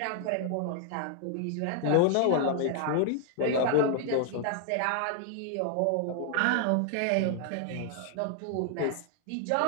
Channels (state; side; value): different; both; correlation 0.00